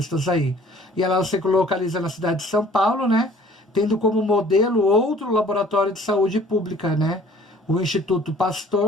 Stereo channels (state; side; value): normal; both; correlation 0.53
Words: aí. E ela se localiza na cidade de São Paulo, né, tendo como modelo outro laboratório de saúde pública, né, o Instituto